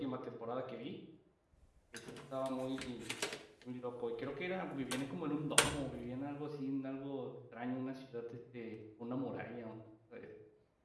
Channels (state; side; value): identical; both; correlation 1.00